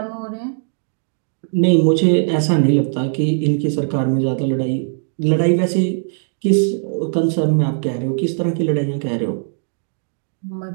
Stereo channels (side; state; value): left; silent; 66 dB below the other